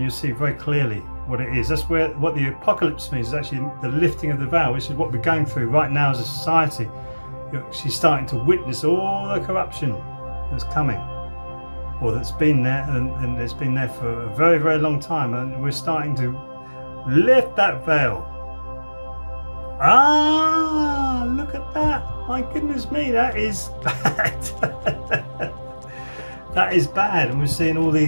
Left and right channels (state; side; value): inverted; both; correlation -1.00